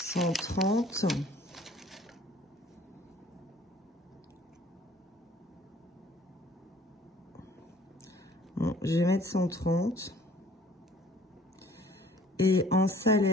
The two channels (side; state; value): both; normal; correlation 0.54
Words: Bon, je vais mettre 130. Et en